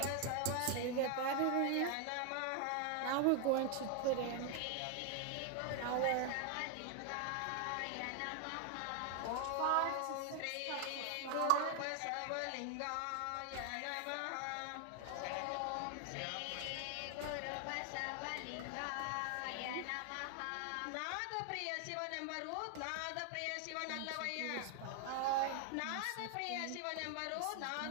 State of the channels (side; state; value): both; different; correlation 0.00